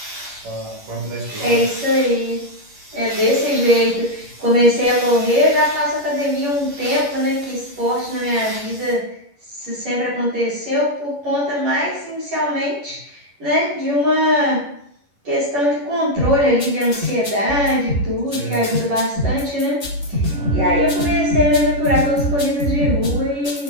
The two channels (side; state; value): left; late; 11 ms